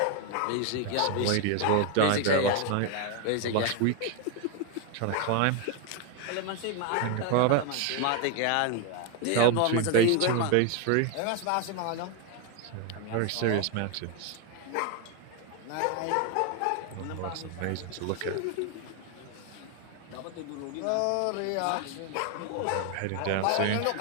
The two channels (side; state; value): both; different; correlation 0.01